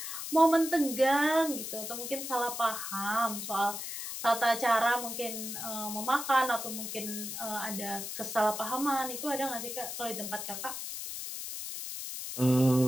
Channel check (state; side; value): noise; left; hiss, 6 dB below the sound